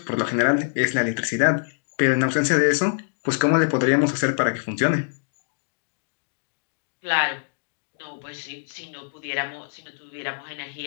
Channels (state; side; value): silent; right; digital silence